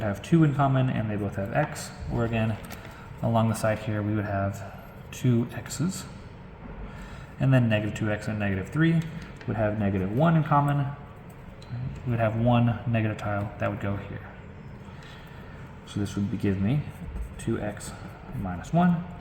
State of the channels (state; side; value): identical; both; correlation 1.00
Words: have 2 in common, and they both have x. Or again, along the side here, we would have 2 x's. And then -2x and -3 would have -1 in common. We would have one negative tile that would go here. So this would give me 2x minus 1.